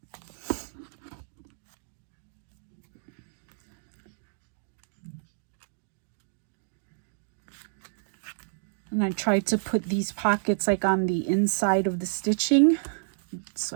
And I tried to put these pockets like on the inside of the stitching, so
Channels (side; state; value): left; silent; digital silence